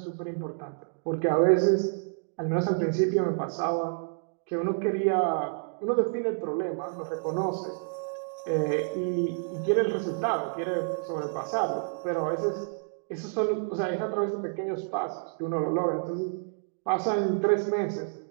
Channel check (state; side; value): silent; left; digital silence